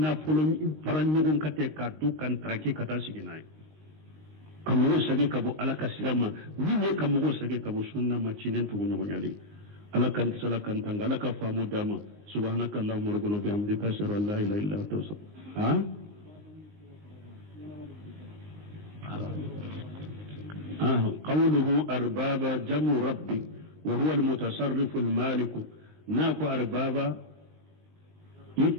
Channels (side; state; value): left; late; 19 ms